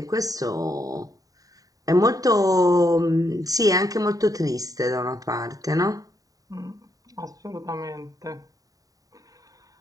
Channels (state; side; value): late; left; 0.17 ms